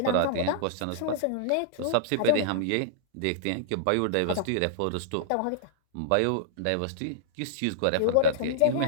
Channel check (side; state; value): both; different; correlation -0.02